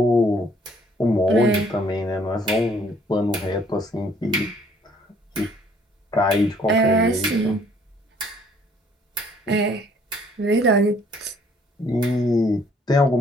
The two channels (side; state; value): both; normal; correlation 0.61